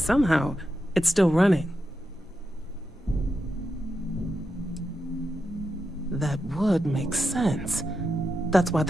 it's still running. That would make sense. That's why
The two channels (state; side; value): normal; both; correlation 0.87